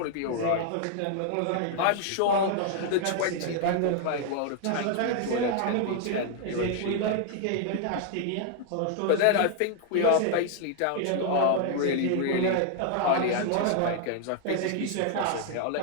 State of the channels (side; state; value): both; different; correlation 0.00